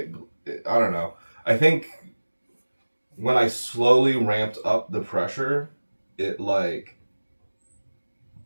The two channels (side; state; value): both; inverted; correlation -1.00